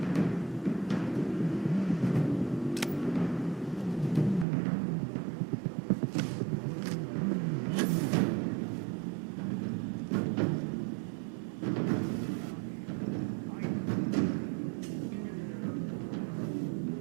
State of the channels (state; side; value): drops out; left; at 4.5 s